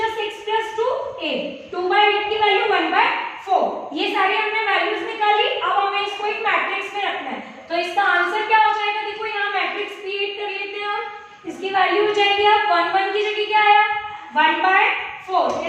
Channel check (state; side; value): identical; both; correlation 1.00